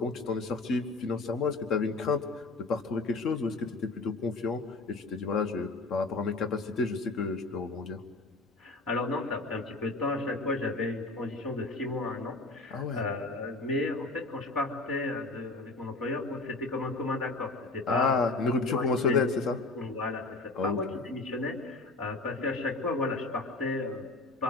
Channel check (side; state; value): right; quieter; 3.3 dB